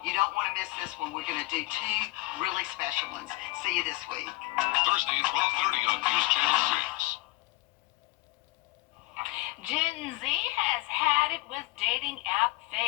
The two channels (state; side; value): quieter; right; 20.6 dB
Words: don't want to miss this one. We're going to do 2 really special ones. See you this week. Thursday at 12:30 on News Channel 6. Gen Z has had it with dating app